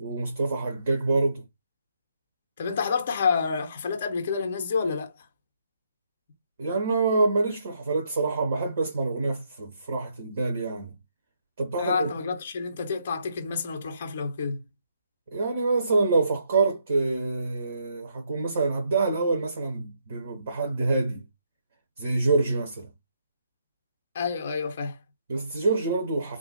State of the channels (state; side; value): inverted; both; correlation -0.75